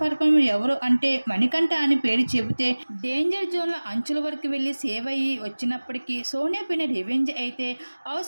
పర్ఫార్మర్ ఎవరు అంటే మణికంఠ అని పేరు చెబితే డేంజర్ జోన్లో అంచుల వరకు వెళ్ళి సేవ్ అయ్యి వచ్చినప్పటికీ సోనియా పైన రివెంజ్ అయితే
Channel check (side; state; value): both; inverted; correlation -1.00